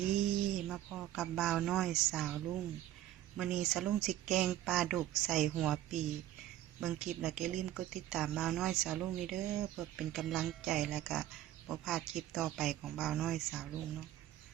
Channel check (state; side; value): quieter; left; 13.2 dB